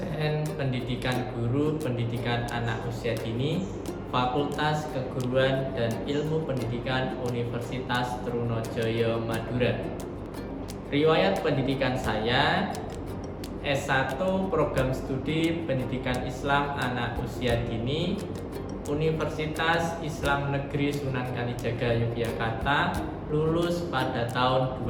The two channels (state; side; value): identical; both; correlation 1.00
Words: pendidikan guru pendidikan anak usia dini, Fakultas Keguruan dan Ilmu Pendidikan Universitas Trunojoyo Madura. Riwayat pendidikan saya: S1 Program Studi Pendidikan Islam Anak Usia Dini, Universitas Islam Negeri Sunan Kalijaga Yogyakarta, lulus pada tahun